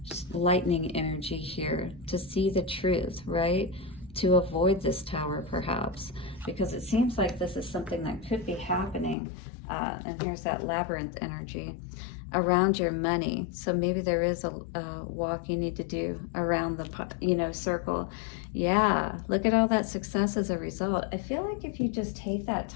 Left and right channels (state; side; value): drops out; right; at 9.2 s